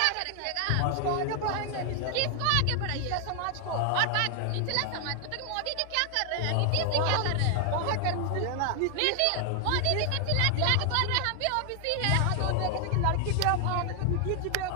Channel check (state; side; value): different; both; correlation 0.00